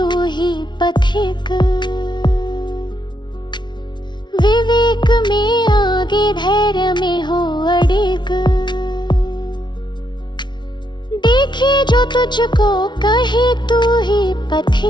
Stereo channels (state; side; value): late; right; 0.22 ms